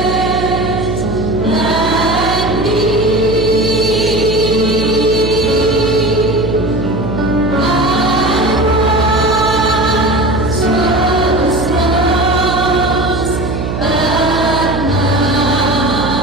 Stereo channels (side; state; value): right; noise; hum, 4 dB below the sound